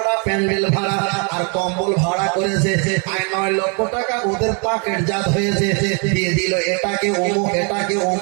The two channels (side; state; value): left; quieter; 36.1 dB